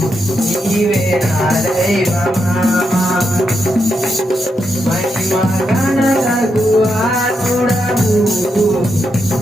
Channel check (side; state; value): both; normal; correlation 0.83